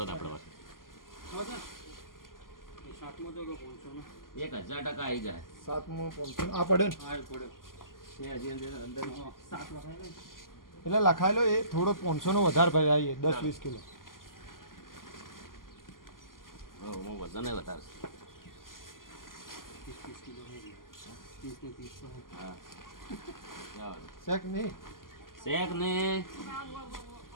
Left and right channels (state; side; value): late; right; 0.91 ms